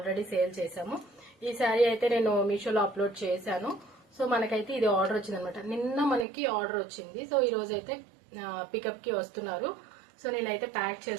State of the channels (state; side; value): drops out; left; at 6.2 s